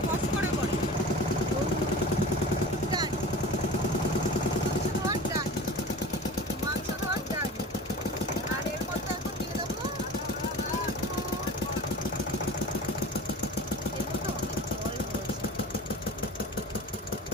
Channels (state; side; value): normal; both; correlation 0.36